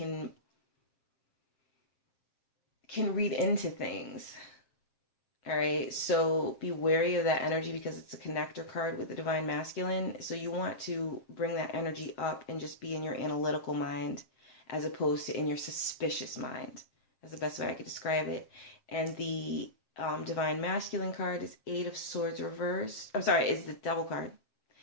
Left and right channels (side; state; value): right; late; 7.8 ms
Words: read into things. All right, so be wary of that energy because it's a connector card with the Divine Masculine. So you want to bring that energy up and just be in your analytical mind as opposed to in your suspicious mind. That's the best way I could describe it. And the Divine Masculine card is 8 of Swords reversed. I'm sorry, is the Devil card